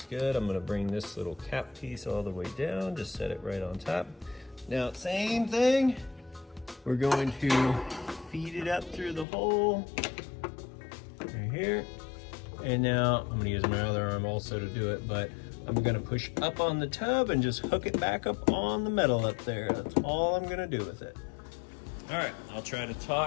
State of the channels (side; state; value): right; drops out; at 9.2 s